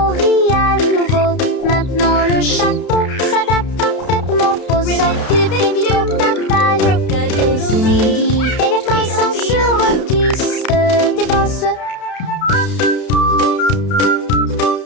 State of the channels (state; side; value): late; right; 32 ms